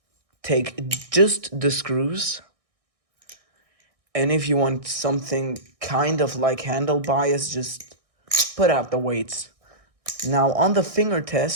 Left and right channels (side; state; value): left; late; 1.6 ms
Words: take just the screws. And if you want something kind of like handle bias, just put out the weights. Now on the finger